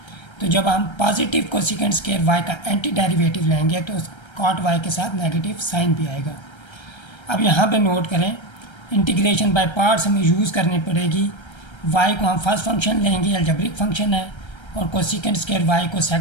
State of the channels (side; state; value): right; late; 1.3 ms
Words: तो जब हम पॉजिटिव cosec² y का एंटी डेरिवेटिव लेंगे तो cot y के साथ नेगेटिव साइन भी आएगा। अब यहाँ पे नोट करें, इंटीग्रेशन बाय पार्ट्स हमें यूज़ करनी पड़ेगी। y को हम फर्स्ट फंक्शन लेंगे, अलजेब्रिक फंक्शन है, और cosec² y को